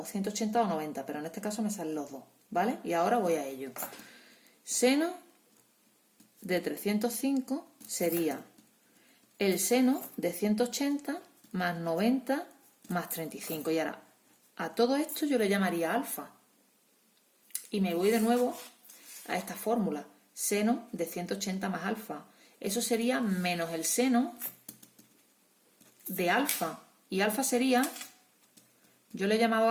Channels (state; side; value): identical; both; correlation 1.00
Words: 180 o 90, pero en este caso me salen los dos, ¿vale? Y ahora voy a ello. Seno de 305 sería el seno de 180 más 90 más 35. Y ahora, a todo esto yo le llamaría alfa. Y me voy de nuevo a esta fórmula. Seno de 180 más alfa. Eso sería menos el seno de alfa. Y alfa sería, yo le he llamado